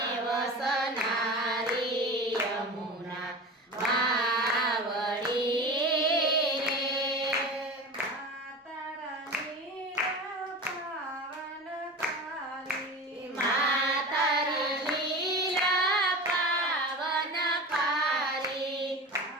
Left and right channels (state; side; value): normal; both; correlation 0.31